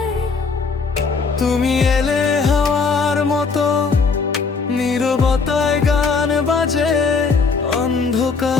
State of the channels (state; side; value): quieter; right; 4.8 dB